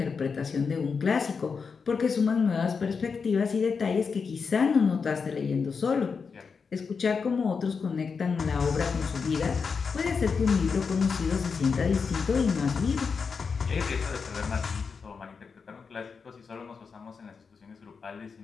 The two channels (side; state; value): right; quieter; 5.4 dB